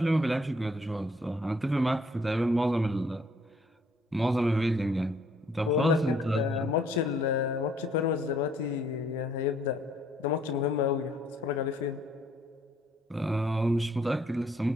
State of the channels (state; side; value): normal; both; correlation 0.64